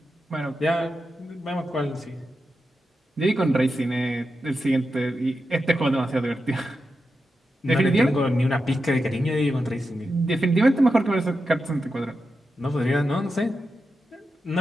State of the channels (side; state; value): both; normal; correlation 0.89